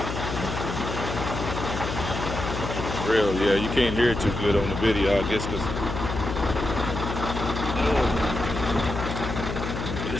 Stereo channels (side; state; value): left; noise; hum, 5 dB below the sound